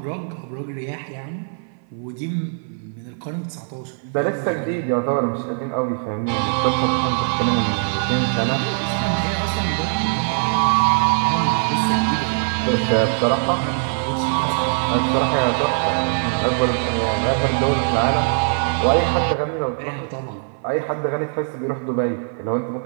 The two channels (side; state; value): left; silent; 59 dB below the other